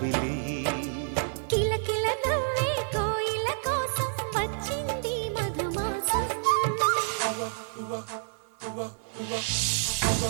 కిలకిల నవ్వే కోయిల కోసం వచ్చింది మధుమాసం.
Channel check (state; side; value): silent; left; digital silence